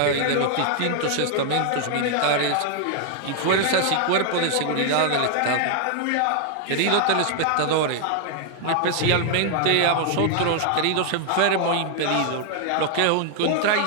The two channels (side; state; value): both; different; correlation 0.00